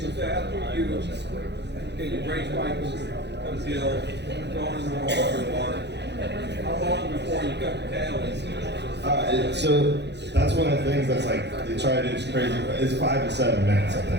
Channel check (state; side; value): late; left; 0.50 ms